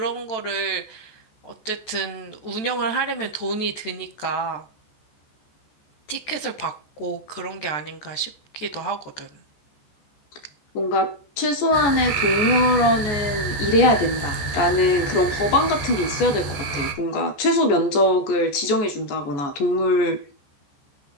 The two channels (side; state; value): right; late; 14 ms